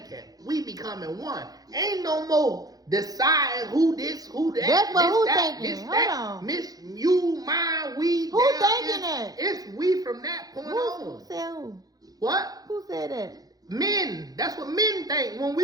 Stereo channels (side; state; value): left; late; 0.18 ms